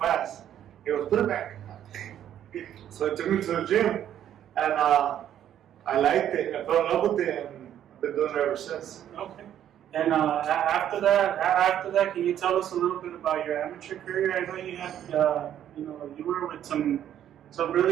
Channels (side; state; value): left; quieter; 10.6 dB